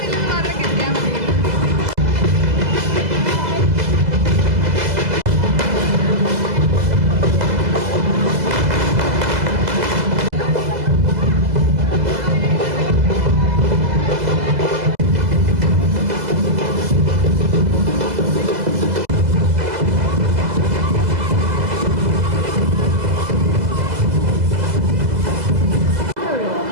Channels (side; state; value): left; late; 2.0 ms